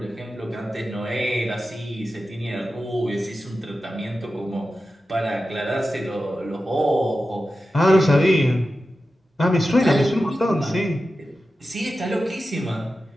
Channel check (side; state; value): both; normal; correlation 0.92